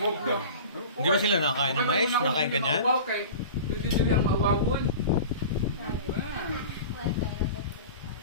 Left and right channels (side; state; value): both; inverted; correlation -0.36